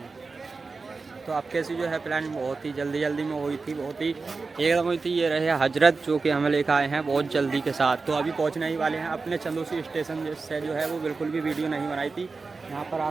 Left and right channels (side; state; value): left; quieter; 4.2 dB